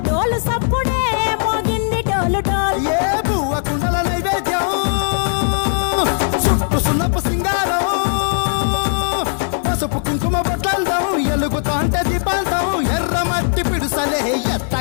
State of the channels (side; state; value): right; silent; digital silence